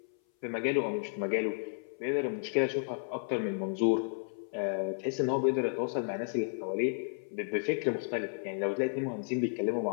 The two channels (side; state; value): right; silent; 56 dB below the other